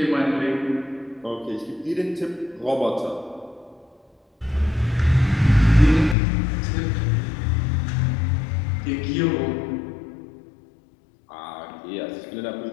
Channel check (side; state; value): right; drops out; at 6.2 s